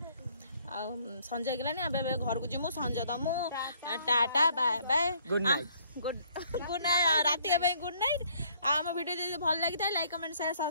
आ संजय गेलानी अबे घर को जिमु संजय दमु tata bye bye good night good night राती के गुड नाइट हम वीडियो जे भल लागि था लाइक कमेंट शेयर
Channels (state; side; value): inverted; both; correlation -0.63